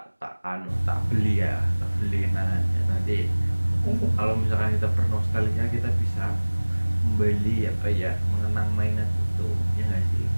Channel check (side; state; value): both; inverted; correlation -1.00